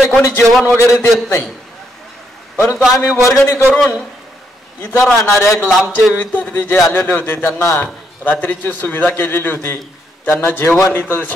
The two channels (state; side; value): normal; both; correlation 0.76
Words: कोणी जेवण वगैरे देत नाही. परंतु आम्ही वर्गणी करून इथं राहणाऱ्या लांबचे विद्यार्थी जे आलेले होते त्यांना रात्रीची सुविधा केलेली होती. त्यांना जेवण इथं